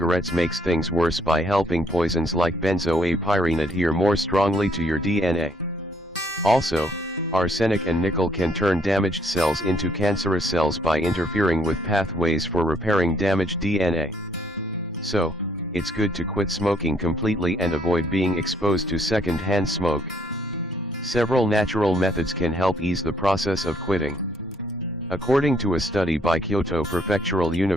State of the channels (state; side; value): normal; both; correlation 0.68